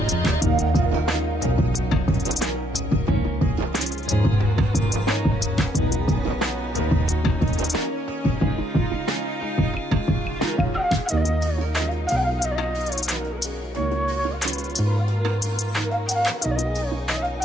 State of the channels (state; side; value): normal; both; correlation 0.74